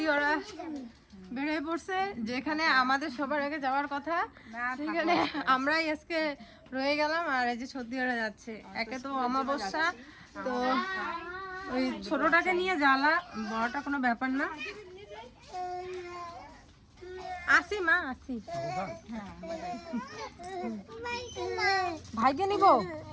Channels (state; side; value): identical; both; correlation 1.00